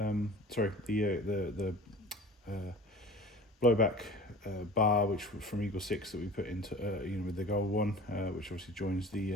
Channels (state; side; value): normal; both; correlation 0.41